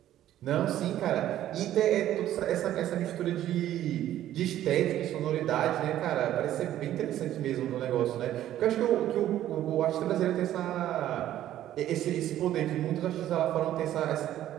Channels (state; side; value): quieter; left; 12.6 dB